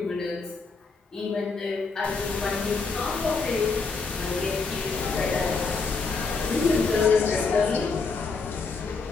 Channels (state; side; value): quieter; right; 4.4 dB